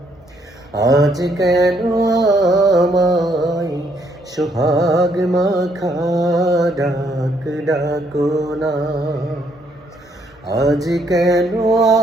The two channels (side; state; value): both; normal; correlation 0.70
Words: আজ কেন আমায় সোহাগ মাখা ডাক ডাকো না। আজ কেন